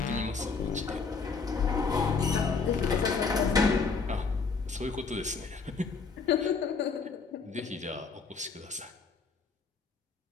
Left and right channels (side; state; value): right; quieter; 4.9 dB